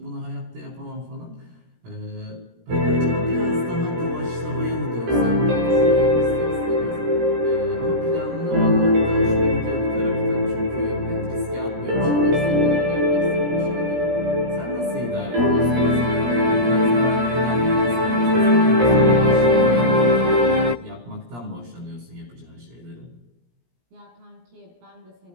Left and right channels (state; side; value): late; left; 17 ms